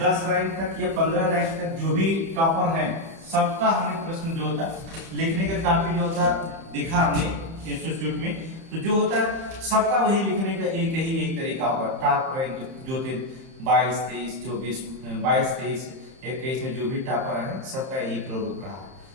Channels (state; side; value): late; left; 30 ms